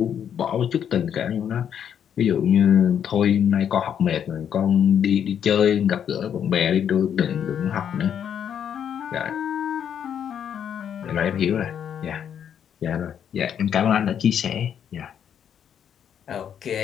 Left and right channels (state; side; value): quieter; right; 8.7 dB